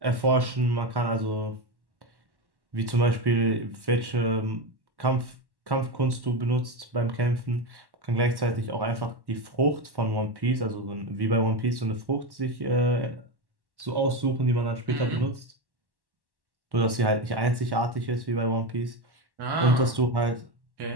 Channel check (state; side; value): late; left; 1.1 ms